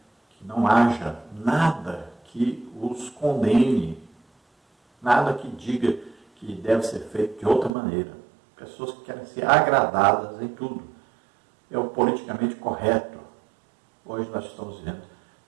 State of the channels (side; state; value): left; drops out; at 7.7 s